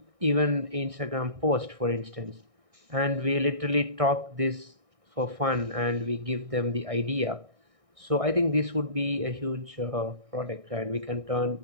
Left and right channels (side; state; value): left; late; 1.6 ms